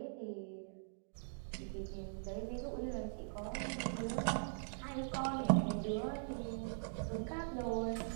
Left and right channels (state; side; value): silent; left; digital silence